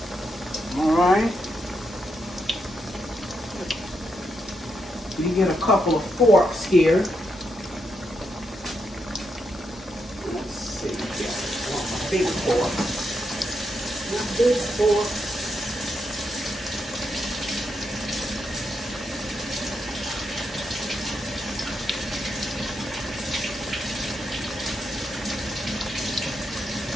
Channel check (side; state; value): both; normal; correlation 0.81